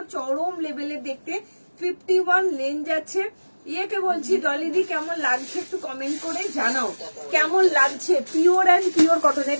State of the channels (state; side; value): inverted; both; correlation -1.00